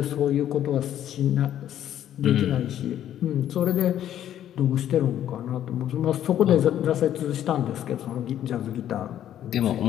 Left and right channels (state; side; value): quieter; right; 11.1 dB